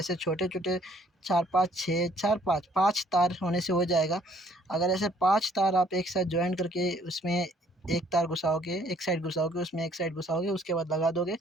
छोटे छोटे, 4 5 6 4 5 तार होने से हो जाएगा। अगर ऐसे 5 तार आप एक साथ ज्वाइन करके उसमें एक तार घुसाओगे, एक साइड घुसाओगे, उसमें एक साइड घुसाओगे, उसके बाद लगा दोगे,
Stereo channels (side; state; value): both; normal; correlation 0.62